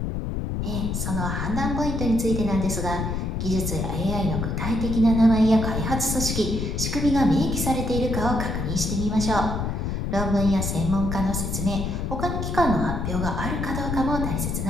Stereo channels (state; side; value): noise; left; rumble, 2 dB below the sound